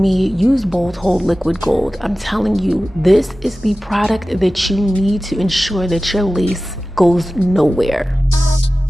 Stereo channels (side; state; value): both; normal; correlation 0.95